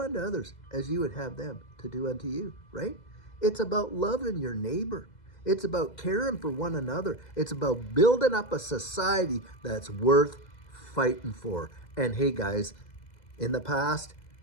others as you would have them to do unto you, right? It's about loving your neighbor. It's about caring for one another. It's about building up a society that's worth fighting for. And hey, guys, in the past,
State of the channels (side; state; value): right; late; 2.0 ms